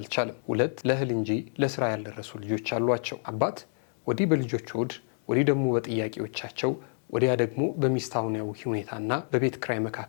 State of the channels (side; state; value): right; silent; digital silence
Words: 2 ለእህል እንጂ ለስራ ያልደረሱ ልጆች አሏቸው። አባት ወዲህ በልጆች ሆድ፣ ወዲህ ደግሞ በጥያቄዎቻቸው፣ ወዲያ ደግሞ በሚስታውያዊ ሁኔታና በቤት ክራይ